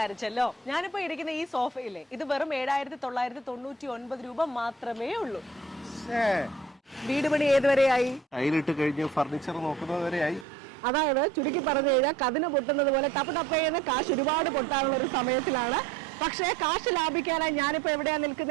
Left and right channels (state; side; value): drops out; left; at 10.5 s